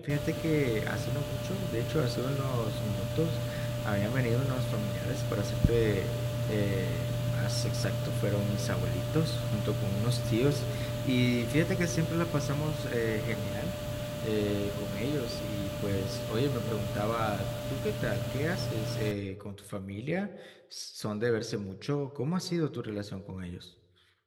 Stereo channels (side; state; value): both; identical; correlation 1.00